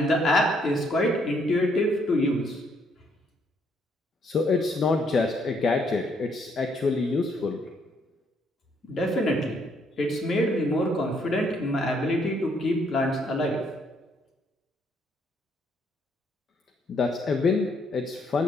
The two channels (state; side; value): normal; both; correlation 0.70